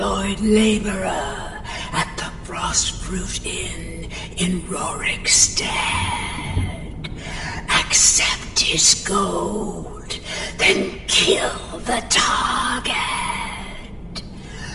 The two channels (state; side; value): identical; both; correlation 1.00